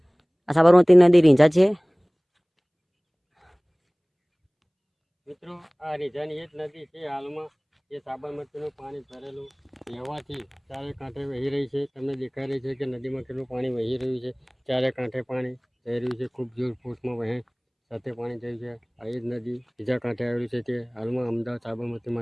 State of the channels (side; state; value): both; identical; correlation 1.00